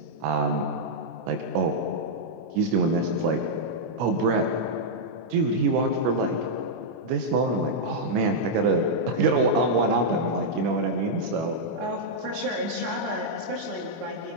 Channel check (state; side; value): late; left; 25 ms